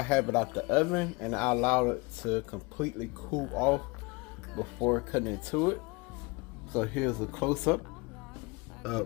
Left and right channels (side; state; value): right; quieter; 26.6 dB